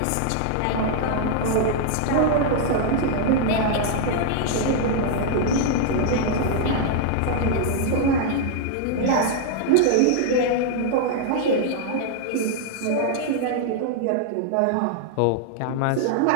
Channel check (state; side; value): different; both; correlation -0.01